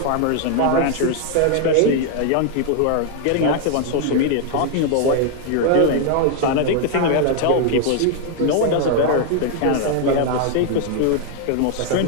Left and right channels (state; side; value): different; both; correlation 0.00